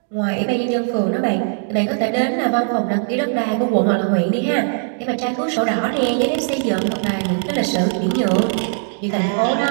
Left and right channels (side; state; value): left; silent; 66 dB below the other